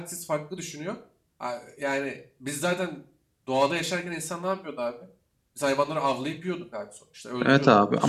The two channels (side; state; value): both; identical; correlation 1.00